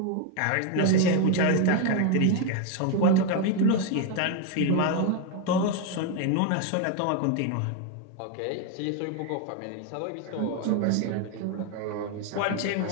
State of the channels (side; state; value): both; different; correlation 0.01